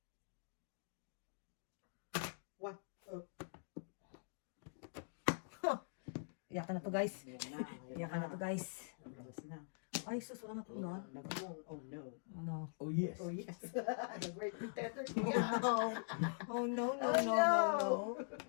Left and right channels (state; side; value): silent; right; digital silence